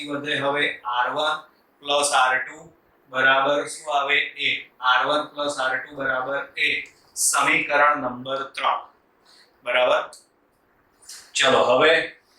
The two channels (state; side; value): identical; both; correlation 1.00